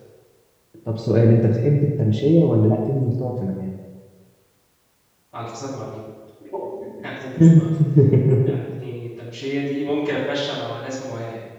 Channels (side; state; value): both; identical; correlation 1.00